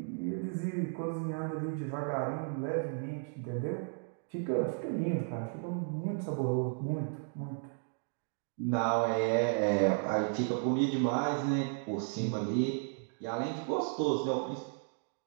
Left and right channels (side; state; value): left; silent; 55 dB below the other